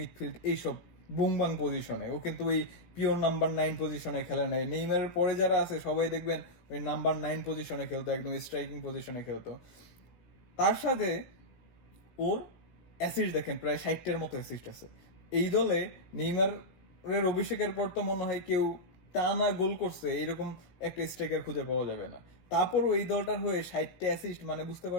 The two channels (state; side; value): late; right; 17 ms